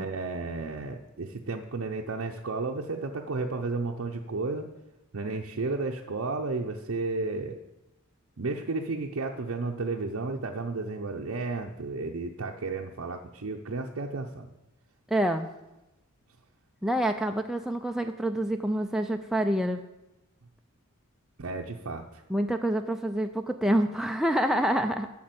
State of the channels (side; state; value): both; normal; correlation 0.56